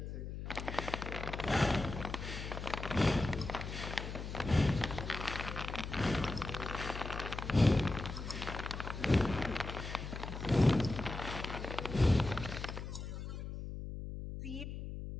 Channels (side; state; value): left; noise; hum, 7 dB below the sound